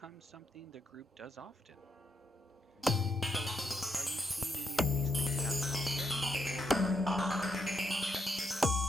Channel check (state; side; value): normal; both; correlation 0.79